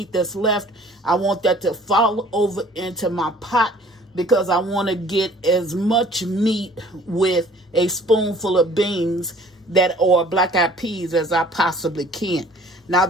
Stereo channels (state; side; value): normal; both; correlation 0.53